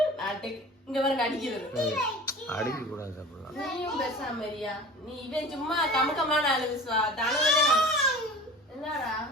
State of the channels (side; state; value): both; normal; correlation 0.38